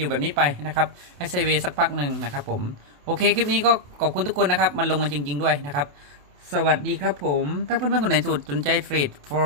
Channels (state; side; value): late; left; 28 ms